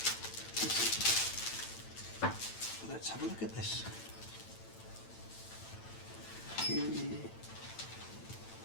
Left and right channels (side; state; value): right; late; 8.9 ms